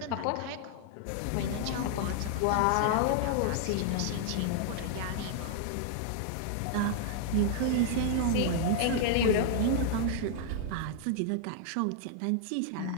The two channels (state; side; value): different; both; correlation -0.01